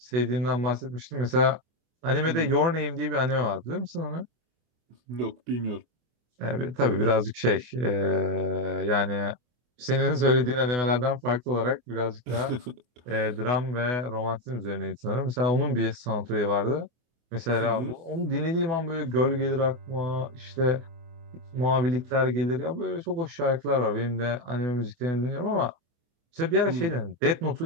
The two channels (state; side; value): late; left; 24 ms